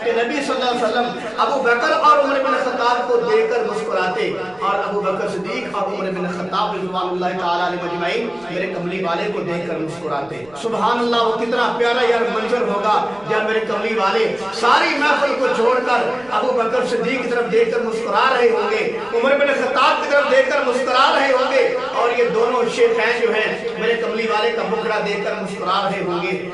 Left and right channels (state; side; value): noise; right; rumble, 28 dB below the sound